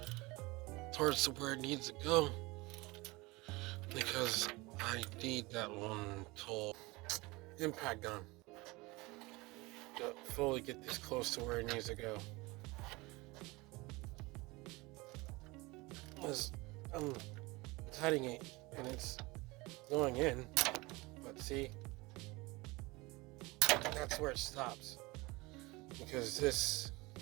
towards where it needs to go, because I need that one tool, impact gun, to fully get this close to where it needs to go. Because I'm tightening it and it's going in, but see, that's where it stops, because this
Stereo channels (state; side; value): quieter; left; 23.2 dB